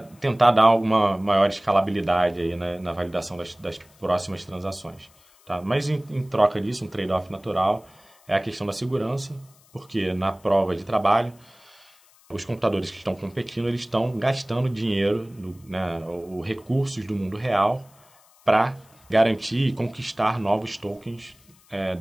dar alguma maior escalabilidade aí, na validação das próximas transações. Tá? Mas em troca disso, um trade-off natural é a questão da segurança, porque na prova de trabalho, os computadores que estão competindo, eles estão gastando dinheiro, né, os recursos do mundo real para garantir e conquistar novos tokens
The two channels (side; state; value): left; noise; hiss, 29 dB below the sound